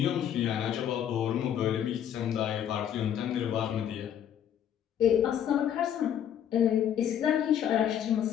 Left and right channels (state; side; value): quieter; right; 9.6 dB